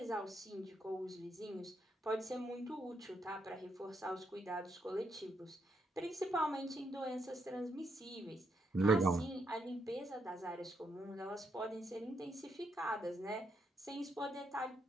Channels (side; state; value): both; normal; correlation 0.78